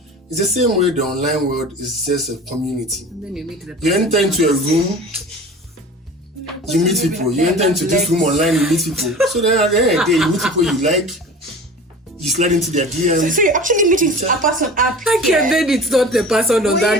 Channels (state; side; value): normal; both; correlation 0.38